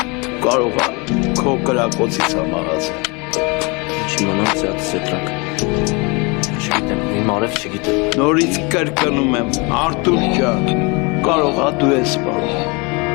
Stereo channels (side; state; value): right; quieter; 29.0 dB